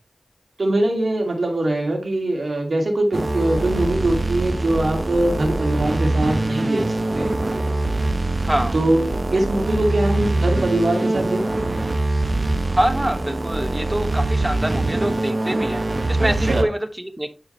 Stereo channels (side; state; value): both; normal; correlation 0.97